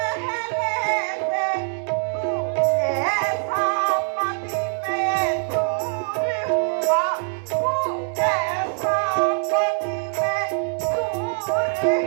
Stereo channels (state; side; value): silent; left; 62 dB below the other